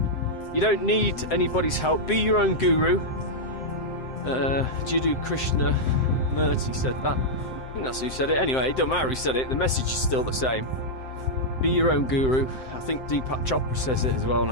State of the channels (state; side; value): late; right; 7.7 ms